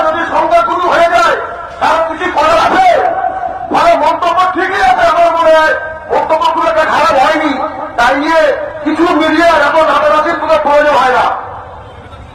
যদি সংখ্যাগুরু হয়ে যায়, তার কিছু করার আছে? মানে মন্তব্য ঠিকই আছে, আমার মনে হয় বক্তব্যগুলোকে খারাপ হয়নি, তাই নিয়ে কিছু মিডিয়ার এখন রাতারাতির কোনো প্রয়োজন হয় না।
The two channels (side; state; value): both; identical; correlation 1.00